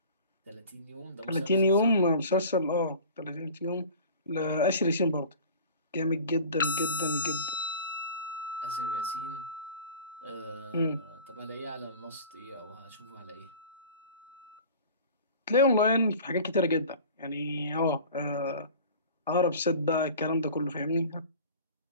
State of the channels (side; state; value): both; inverted; correlation -0.41